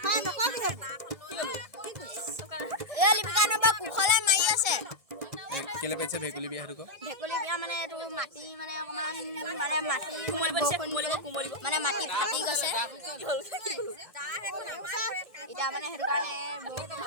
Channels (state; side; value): late; left; 1.6 ms